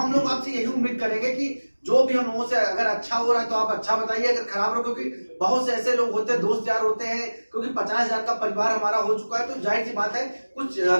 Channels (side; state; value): both; inverted; correlation -1.00